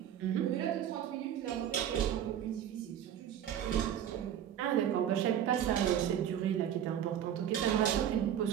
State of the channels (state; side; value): quieter; left; 10.1 dB